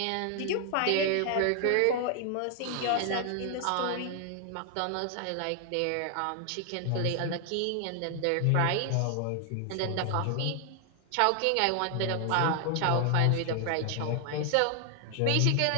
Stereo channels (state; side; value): different; both; correlation 0.00